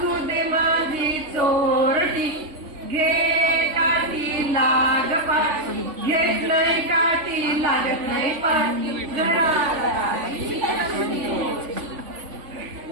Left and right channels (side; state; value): left; late; 3.5 ms